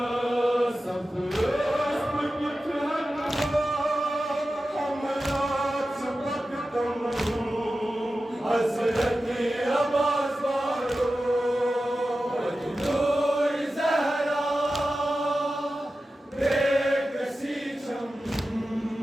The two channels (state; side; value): normal; both; correlation 0.93